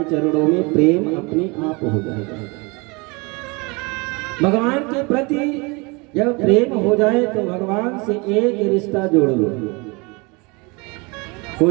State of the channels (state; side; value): quieter; left; 27.8 dB